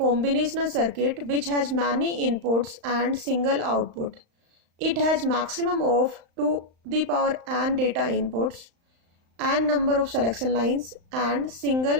circuit which has many inputs and single output. It has maximum of 2 the power n data inputs, n number of selection lines and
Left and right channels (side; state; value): left; late; 35 ms